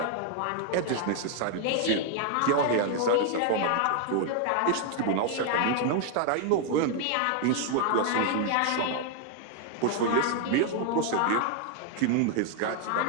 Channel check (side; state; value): both; different; correlation 0.00